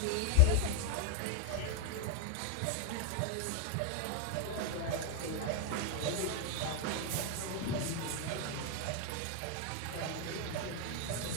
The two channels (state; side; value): different; both; correlation 0.01